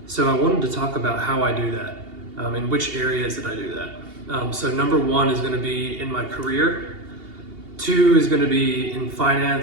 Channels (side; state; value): left; late; 2.8 ms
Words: So I wanted to talk about how I do that, in which areas that I do that. So number one is going to be in my career. Two is going to be in